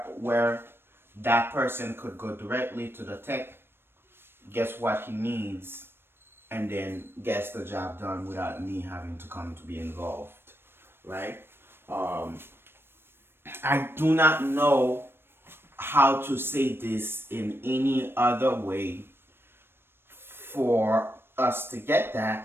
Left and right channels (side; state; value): left; late; 0.11 ms